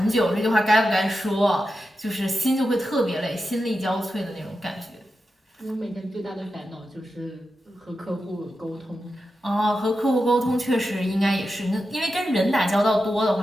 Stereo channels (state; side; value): normal; both; correlation 0.90